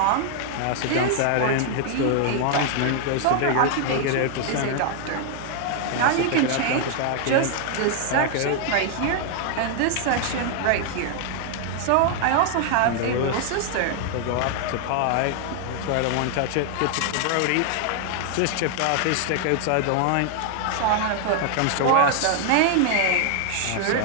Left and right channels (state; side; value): different; both; correlation 0.00